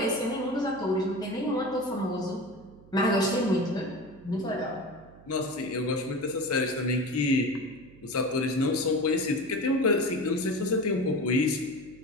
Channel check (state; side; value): noise; right; hum, 22 dB below the sound